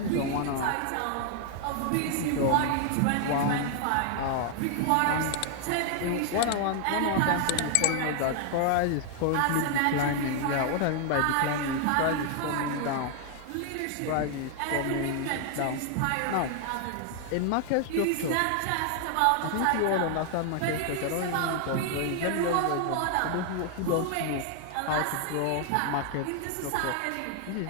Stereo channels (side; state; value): both; different; correlation 0.00